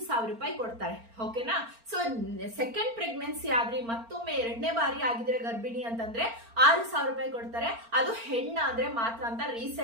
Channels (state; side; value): late; left; 4.4 ms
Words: ರೂಪಾಯಿ ಕೊಡ್ತಾರೆ. ಓಕೆನಾ. ಸೊ ಸೆಕೆಂಡ್ ಪ್ರೆಗ್ನೆನ್ಸಿ ಆದ್ರೆ ಮತ್ತೊಮ್ಮೆ 2ನೇ ಬಾರಿ ಆಗಿದ್ರೆ ಗರ್ಭಿಣಿ ಅಂತಂದ್ರೆ 6,000 ರೂಪಾಯಿ ಕೊಡ್ತಾರೆ. ಅದು ಹೆಣ್ಣಾದ್ರೆ ಮಾತ್ರ ಅಂತ